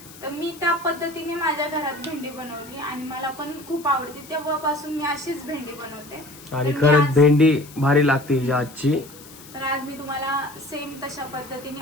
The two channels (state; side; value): noise; left; hiss, 19 dB below the sound